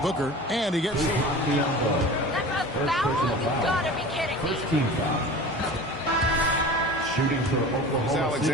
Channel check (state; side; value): normal; both; correlation 0.37